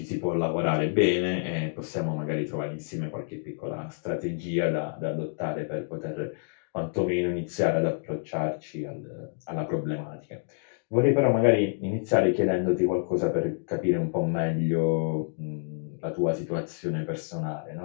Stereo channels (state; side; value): silent; right; digital silence